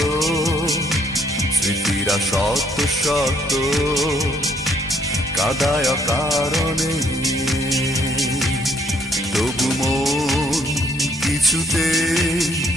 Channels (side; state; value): both; normal; correlation 0.68